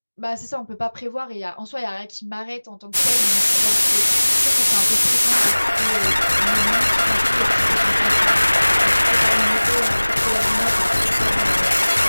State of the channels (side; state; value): both; inverted; correlation -1.00